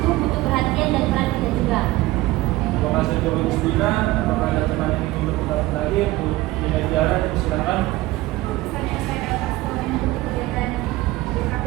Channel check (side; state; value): left; quieter; 18.2 dB